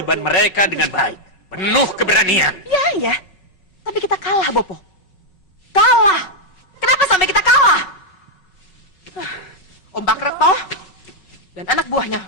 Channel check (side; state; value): right; late; 5.4 ms